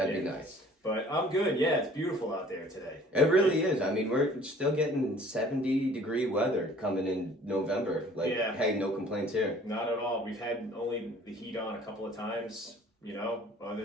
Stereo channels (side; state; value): both; normal; correlation 0.52